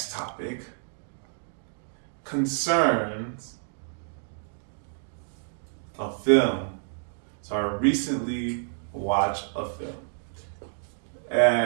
topic concerns a film. So I recently watched a film.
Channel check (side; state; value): left; silent; digital silence